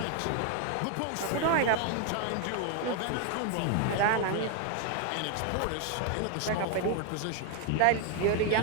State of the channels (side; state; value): both; different; correlation 0.00